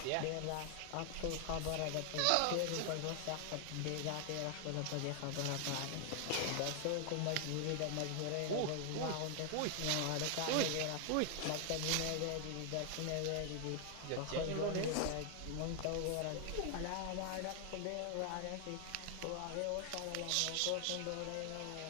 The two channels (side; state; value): both; different; correlation 0.00